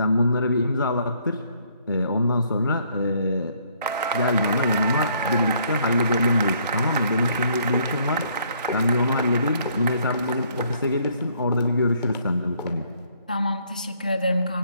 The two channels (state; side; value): inverted; both; correlation -0.66